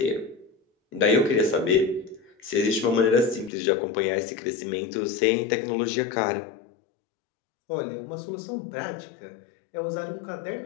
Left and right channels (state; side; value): drops out; right; at 3.5 s